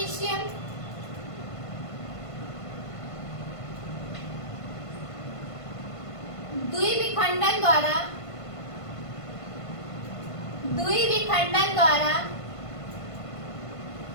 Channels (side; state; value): right; late; 1.5 ms